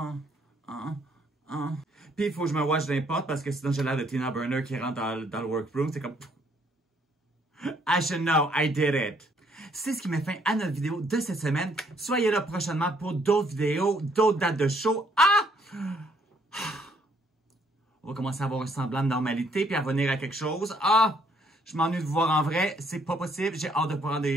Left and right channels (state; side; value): normal; both; correlation 0.67